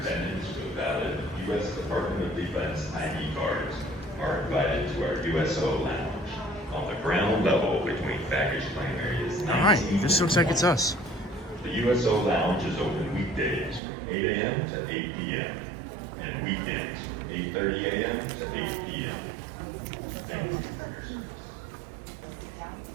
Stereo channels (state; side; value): drops out; left; at 13.8 s